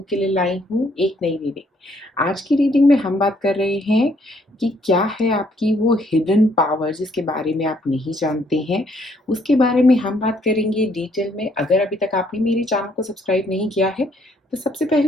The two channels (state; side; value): normal; both; correlation 0.67